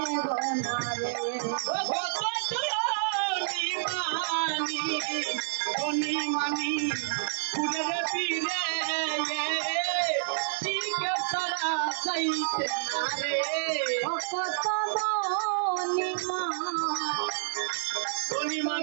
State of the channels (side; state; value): left; silent; 59 dB below the other